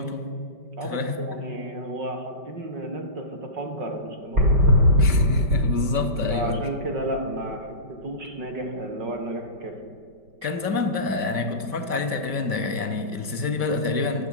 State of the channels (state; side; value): late; left; 5.1 ms